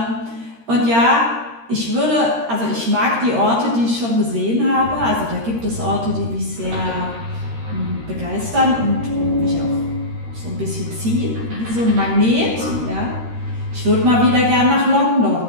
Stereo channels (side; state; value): left; late; 13 ms